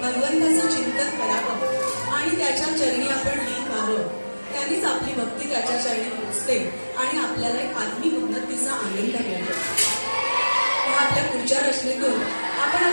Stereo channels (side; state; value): both; inverted; correlation -1.00